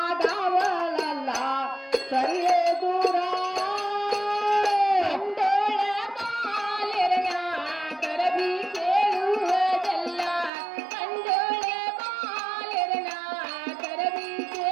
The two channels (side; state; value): left; drops out; at 10.5 s